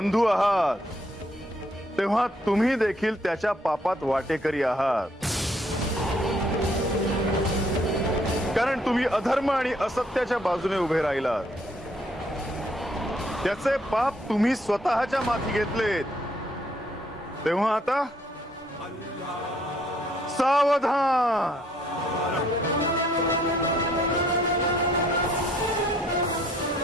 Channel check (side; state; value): both; normal; correlation 0.67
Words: आहात. तेव्हा तुम्ही देखील त्याच्या पापात वाटेकरी आहात. कारण तुम्ही अधर्म आणि असत्याच्या बाजूने उभे राहिलात. त्याचे पाप तुम्ही स्वतःच्या माथी घेतलेत. तेव्हा आता सावधान.